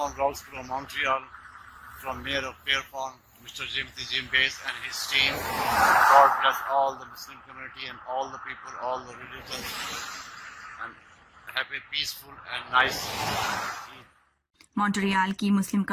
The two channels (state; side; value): identical; both; correlation 1.00